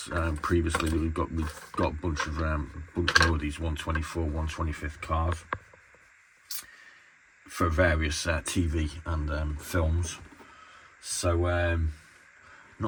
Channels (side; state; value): both; identical; correlation 1.00